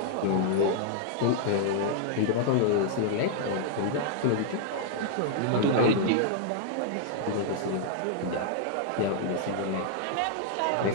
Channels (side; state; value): both; different; correlation -0.01